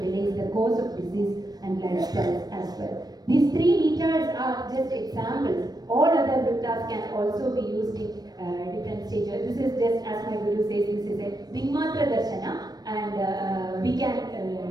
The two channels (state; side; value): late; left; 0.19 ms